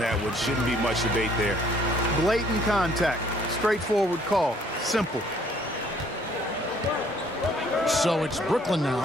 one. Shouldn't be much debate there. Blatant contact. Straightforward call. Simple. So it's Brooklyn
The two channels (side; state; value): both; normal; correlation 0.61